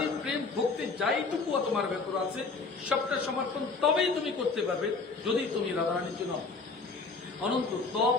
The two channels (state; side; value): quieter; right; 4.2 dB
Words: প্রেম, ভক্তি যাইটুকু তোমার ভেতর আছে সবটা সমর্পণ তবেই তুমি করতে পারবে যদি তুমি রাধারানীর জন্য অনন্ত